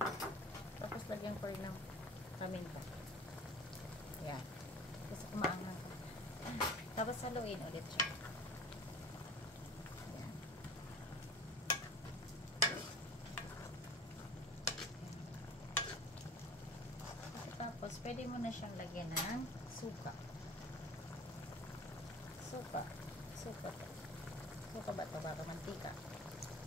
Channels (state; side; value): normal; both; correlation 0.41